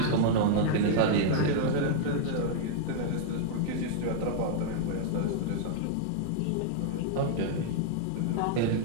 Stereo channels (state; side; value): different; both; correlation -0.01